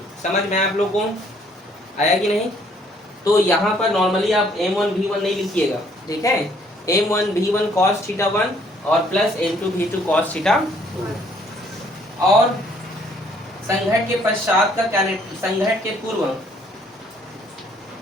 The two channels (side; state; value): both; normal; correlation 0.63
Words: समझ में आप लोगों को आया कि नहीं। तो यहाँ पर नॉर्मली आप m1 v1 नहीं लिखिएगा, ठीक है। m1 v1 cos थीटा 1 और plus m2 v2 cos theta 2। और संघट के पश्चात का संघट के पूर्व